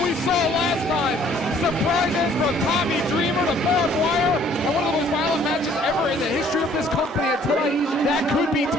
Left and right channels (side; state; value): both; normal; correlation 0.59